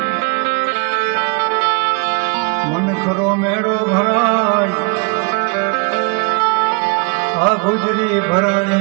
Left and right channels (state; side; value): quieter; left; 32.9 dB